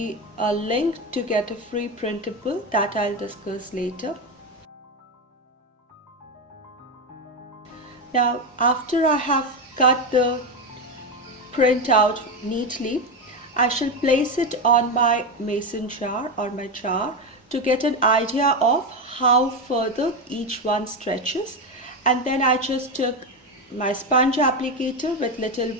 a link to get a free printable that I'll discuss later. Now, after I have cut the print out neatly, I shall place it on my mason jar or my jar to get an idea of how further each one stretches. And then I just took my sponge applicator with little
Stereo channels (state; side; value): normal; both; correlation 0.13